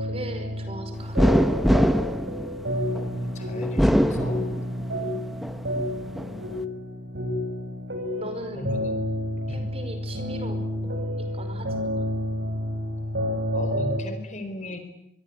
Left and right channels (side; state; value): both; normal; correlation 0.69